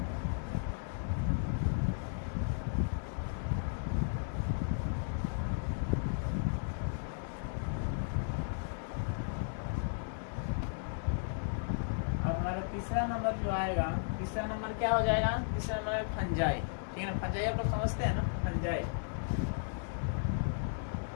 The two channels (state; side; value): silent; right; digital silence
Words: तीसरा नंबर जो आएगा, तीसरा नंबर क्या हो जाएगा, तीसरा नंबर फंजाई, ठीक है ना। फंजाई आप लोग समझते हैं ना, फंजाई,